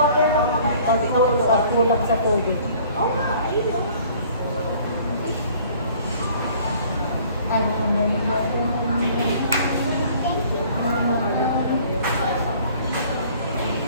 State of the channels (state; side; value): inverted; both; correlation -0.54